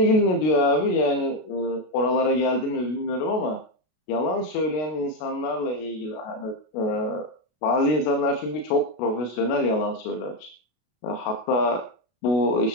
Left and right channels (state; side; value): late; right; 32 ms